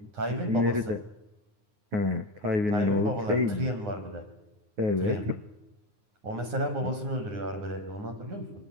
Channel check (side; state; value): left; late; 9.6 ms